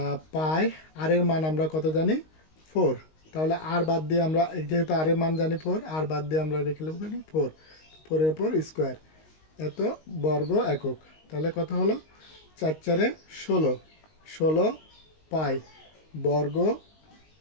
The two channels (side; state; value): right; late; 19 ms